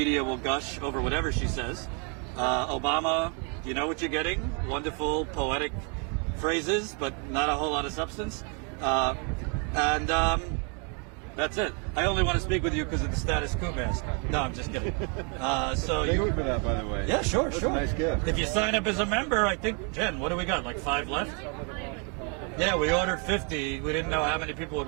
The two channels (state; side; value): quieter; left; 36.5 dB